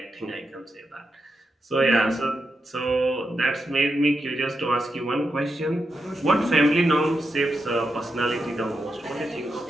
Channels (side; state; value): both; normal; correlation 0.86